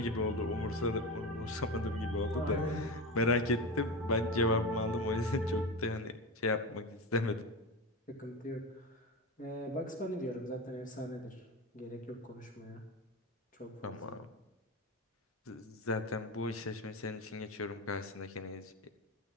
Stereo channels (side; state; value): both; normal; correlation 0.22